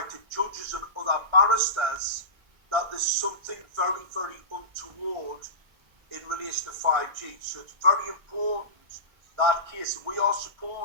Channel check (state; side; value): late; left; 1.6 ms